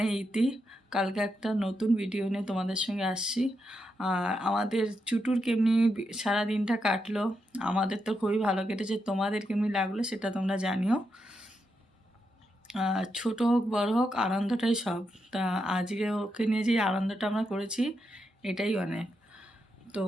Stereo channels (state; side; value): normal; both; correlation 0.84